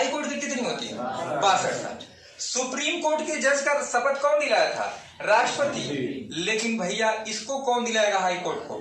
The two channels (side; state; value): both; identical; correlation 1.00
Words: कोर्ट की कितनी होती है? 62 साल। सुप्रीम कोर्ट के जज का शपथ कौन दिलाया था? राष्ट्रपति। लेकिन भैया इसको कौन दिलाएगा हाई कोर्ट को?